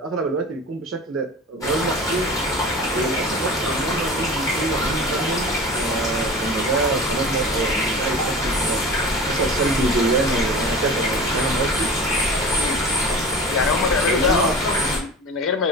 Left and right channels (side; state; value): both; normal; correlation 0.35